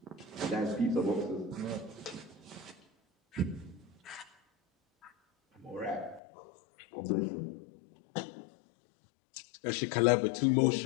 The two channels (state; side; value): drops out; right; at 6.2 s